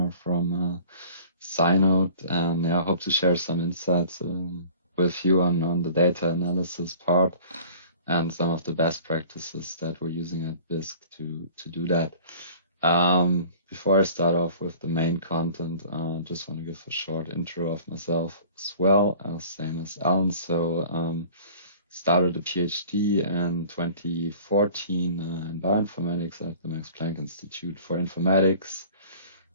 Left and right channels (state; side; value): inverted; both; correlation -0.47